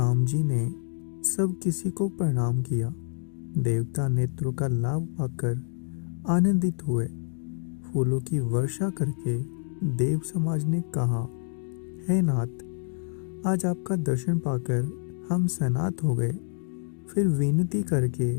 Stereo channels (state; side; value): silent; right; 60 dB below the other